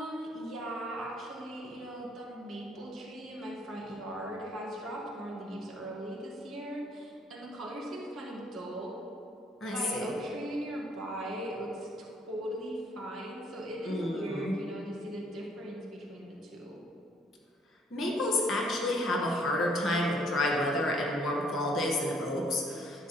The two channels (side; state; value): both; normal; correlation 0.64